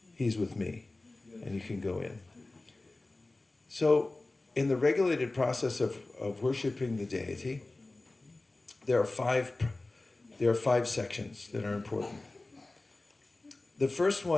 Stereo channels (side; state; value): right; quieter; 3.0 dB